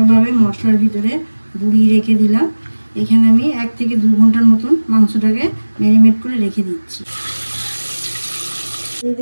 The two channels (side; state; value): both; inverted; correlation -1.00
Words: মশলার ভিতরে গুঁড়িয়ে রেখে দিলাম। এখানে আমি 1 থেকে 2 ঘন্টার মতন মাংসটাকে ম্যারিনেট করে রেখে দিচ্ছি। দিয়ে